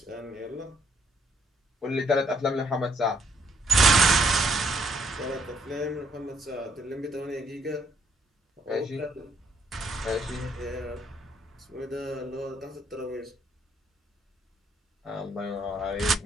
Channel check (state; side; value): normal; both; correlation 0.70